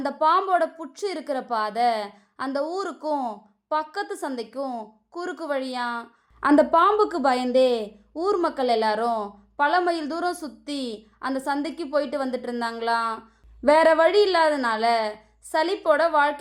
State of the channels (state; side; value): identical; both; correlation 1.00